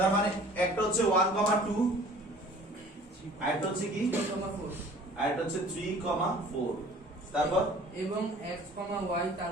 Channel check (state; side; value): normal; both; correlation 0.49